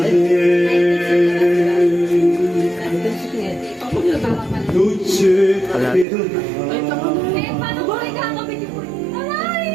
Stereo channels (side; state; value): left; drops out; at 6.1 s